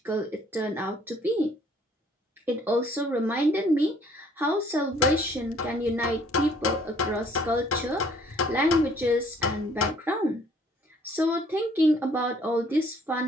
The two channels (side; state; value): both; normal; correlation 0.60